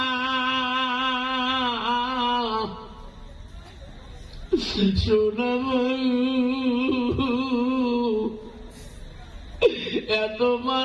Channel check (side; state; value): both; identical; correlation 1.00